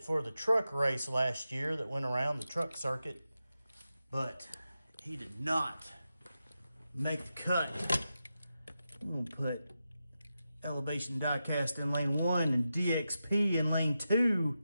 for the truck race last year that went around the truck circuit, but he did not make the cut. I'm gonna put Elevation Diecast in lane 1 and DXP in lane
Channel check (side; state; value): both; inverted; correlation -0.90